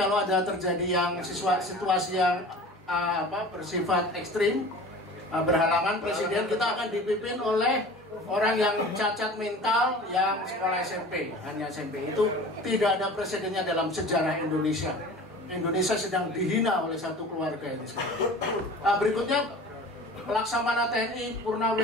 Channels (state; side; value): normal; both; correlation 0.40